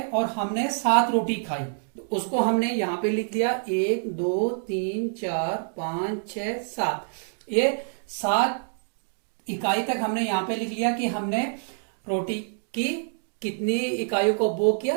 और हमने 7 रोटी खाई, तो उसको हमने यहाँ पे लिख दिया 1 2 3 4 5 6 7। ये 7 इकाई तक हमने यहाँ पे लिख लिया कि हमने रोटी की कितनी इकाइयों को उपभोग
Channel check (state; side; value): silent; left; digital silence